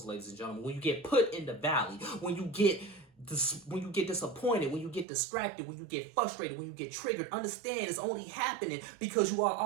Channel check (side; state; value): left; drops out; at 5.1 s